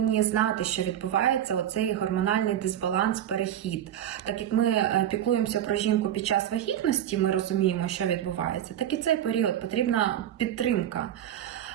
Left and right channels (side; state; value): left; quieter; 11.0 dB